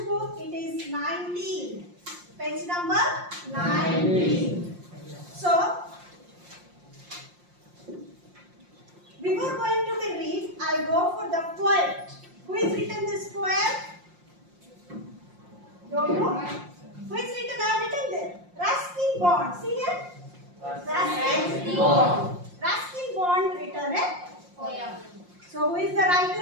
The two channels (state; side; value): late; left; 5.7 ms